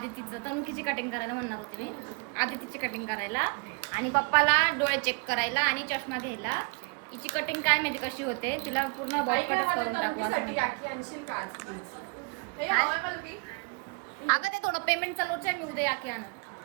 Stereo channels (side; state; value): left; quieter; 32.8 dB